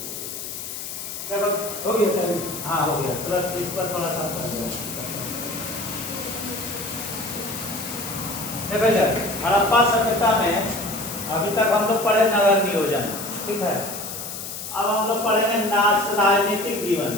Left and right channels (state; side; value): noise; left; hiss, 8 dB below the sound